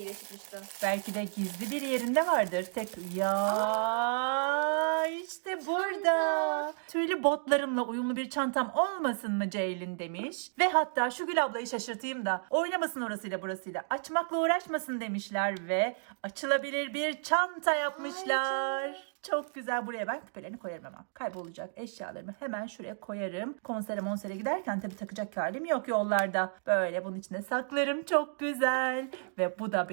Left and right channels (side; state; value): left; silent; digital silence